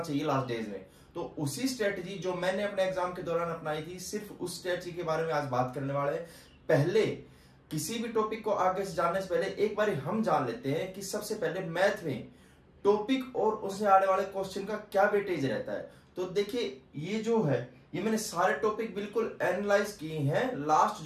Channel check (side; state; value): both; identical; correlation 1.00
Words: चाहिए लास्ट डेज में। तो उसी स्ट्रेटजी जो मैंने अपने एग्जाम के दौरान अपनाई थी, सिर्फ उस स्ट्रेटजी के बारे में आज बात करने वाले हैं। पहले किसी भी टॉपिक को आगे से जानने से पहले एक बार हम जान लेते हैं कि सबसे पहले मैथ में टॉपिक और उससे आने वाले क्वेश्चन का क्या वेटेज रहता है। तो देखिए ये जो है, ये मैंने सारे टॉपिक बिल्कुल एनालाइज किए हैं। लास्ट